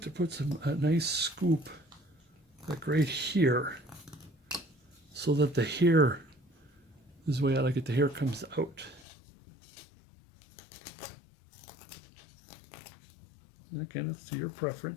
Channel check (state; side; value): drops out; right; at 9.1 s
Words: to put a nice scoop like right here so that the hair, this is the way I like it, the hair comes out. And again, it's to your